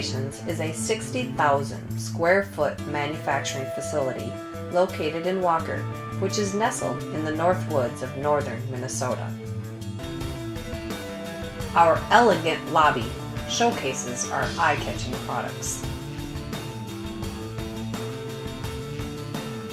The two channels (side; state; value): both; identical; correlation 1.00